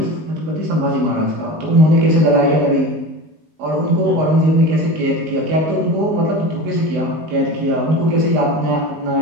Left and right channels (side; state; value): left; late; 19 ms